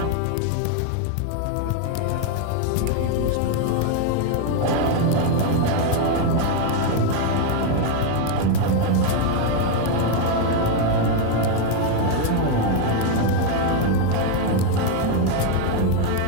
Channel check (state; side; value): different; both; correlation 0.01